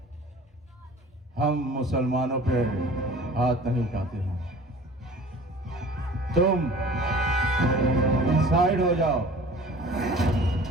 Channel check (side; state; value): both; normal; correlation 0.45